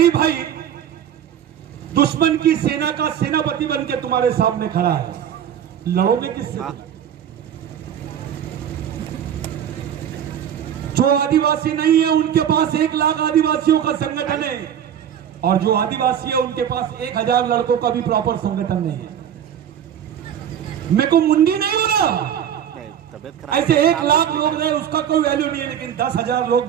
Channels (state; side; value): quieter; left; 9.4 dB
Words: भाई दुश्मन की सेना का सेनापति बन के तुम्हारे सामने खड़ा है, लड़ोगे किससे? हाँ। जो आदिवासी नहीं है उनके पास 1 लाख आदिवासियों का संगठन है, और जो आदिवासी है उनके पास 1000 लड़कों का भी प्रॉपर संगठन नहीं है। मेरे को मुंडी नहीं हो रहा। ऐसे 1 लाख लोग रहे उसका कोई वैल्यू नहीं है, लेकिन 10,000 लोग